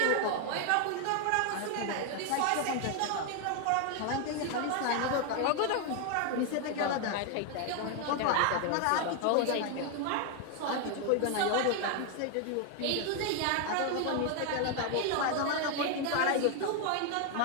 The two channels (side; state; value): both; different; correlation 0.00